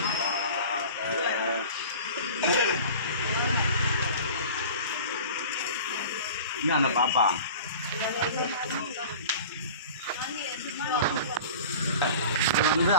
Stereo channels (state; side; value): inverted; both; correlation -0.39